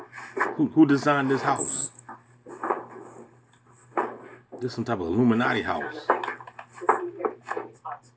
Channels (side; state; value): both; identical; correlation 1.00